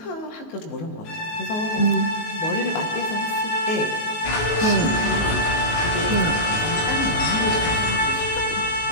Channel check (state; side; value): late; right; 19 ms